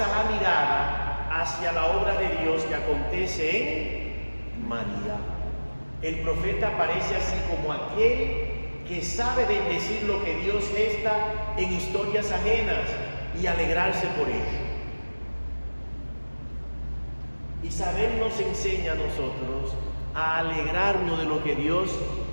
la mirada hacia la obra de Dios que acontece en María. El profeta aparece así como aquel que sabe bendecir lo que Dios gesta en historias ajenas y alegrarse por ello. Isabel nos enseña a nosotros a alegrarnos de lo que Dios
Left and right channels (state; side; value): inverted; both; correlation -1.00